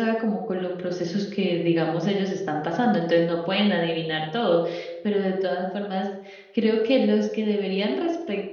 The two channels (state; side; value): identical; both; correlation 1.00